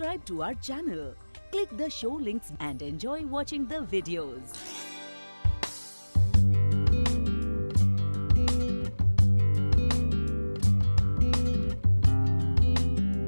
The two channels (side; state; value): both; inverted; correlation -1.00